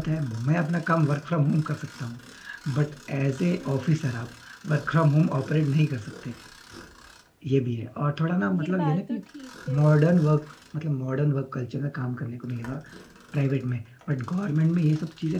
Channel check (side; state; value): both; identical; correlation 1.00